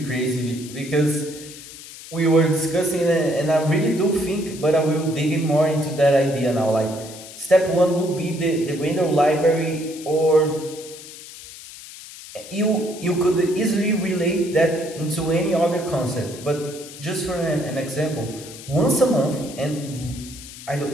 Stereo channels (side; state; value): left; noise; hiss, 15 dB below the sound